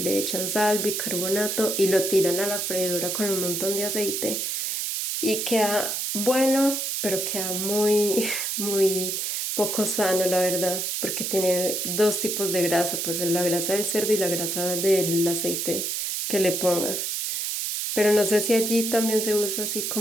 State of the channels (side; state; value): right; noise; hiss, 1 dB below the sound